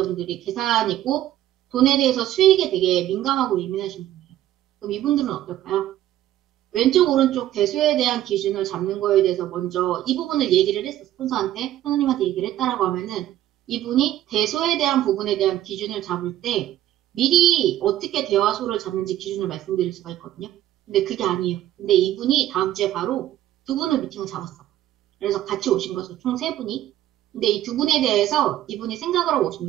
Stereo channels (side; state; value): left; quieter; 13.1 dB